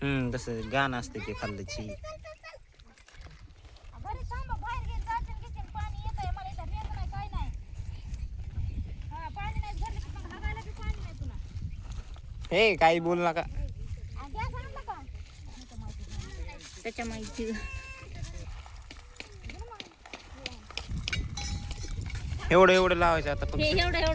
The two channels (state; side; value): identical; both; correlation 1.00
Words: तसं गाणं असते ते खाल्ल्याची हे काही बोल नका त्याच्या माहिती एवढं लावायचं आता हे